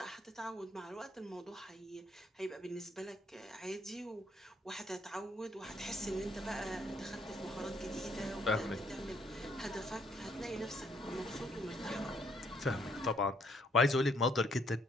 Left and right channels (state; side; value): normal; both; correlation 0.69